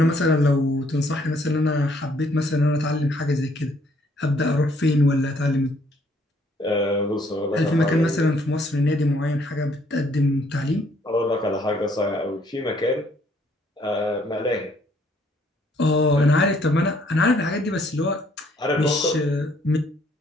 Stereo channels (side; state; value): both; normal; correlation 0.65